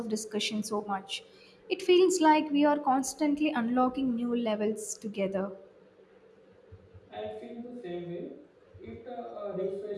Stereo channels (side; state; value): both; identical; correlation 1.00